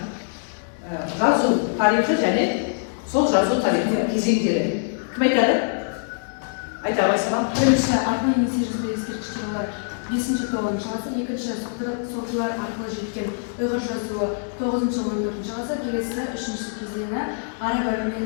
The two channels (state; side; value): silent; right; digital silence